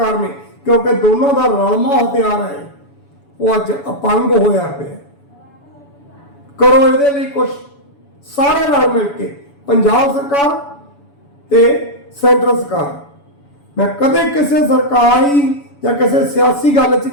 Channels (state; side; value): late; right; 7.0 ms